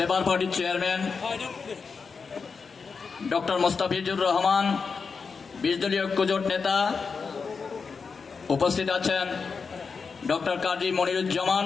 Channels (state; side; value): quieter; right; 5.2 dB